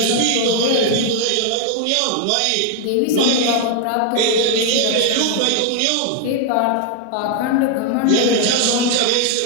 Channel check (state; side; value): different; both; correlation 0.00